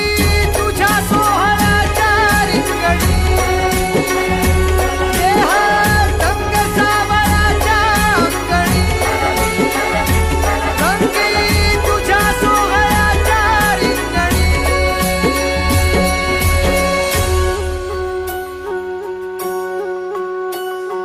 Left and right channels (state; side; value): identical; both; correlation 1.00